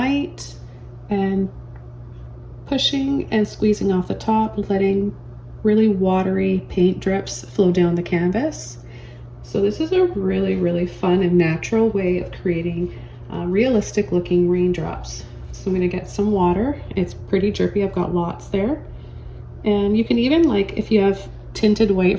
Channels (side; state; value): both; identical; correlation 1.00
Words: and pushing and squeezing off the top, letting really watery paint drips flow down the canvas. So this is a really fun and natural way of creating realistic looking raindrops. So I'm going to get some water. It's pretty drippy. I've got lots there. And you can even, like, if you have tinted white